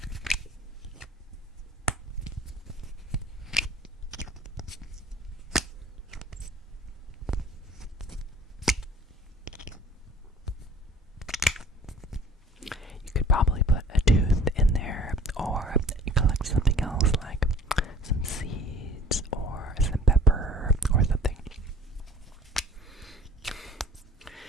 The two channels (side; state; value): both; normal; correlation 0.49